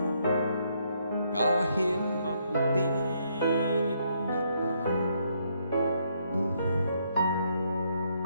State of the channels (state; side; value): inverted; both; correlation -0.73